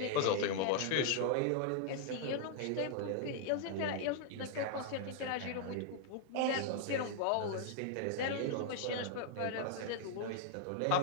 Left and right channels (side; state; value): both; different; correlation 0.00